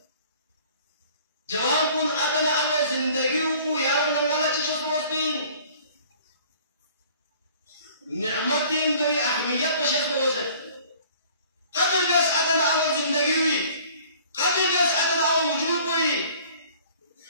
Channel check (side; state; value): both; inverted; correlation -0.51